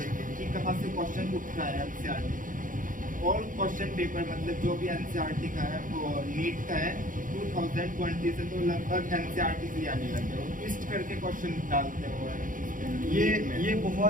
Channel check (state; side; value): late; left; 0.39 ms